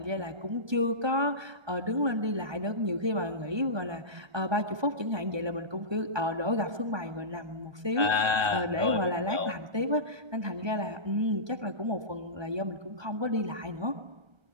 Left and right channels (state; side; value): late; left; 1.2 ms